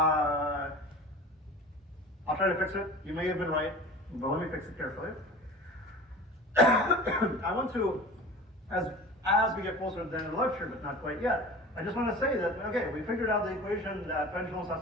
try to fix it. You may have been right, but let me fix it carefully. I want to, as we get closer to the end of the lecture, but not quite yet, I just want to say that, okay, we figured out the equation that pendulums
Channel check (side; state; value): both; normal; correlation 0.38